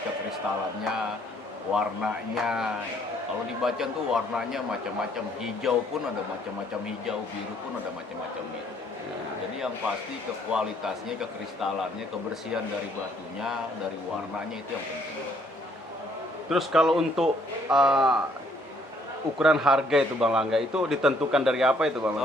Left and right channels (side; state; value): both; normal; correlation 0.65